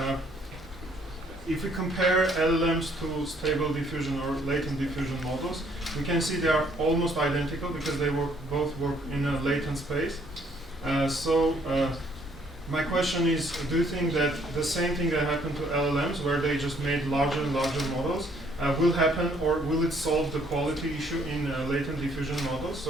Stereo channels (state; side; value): normal; both; correlation 0.65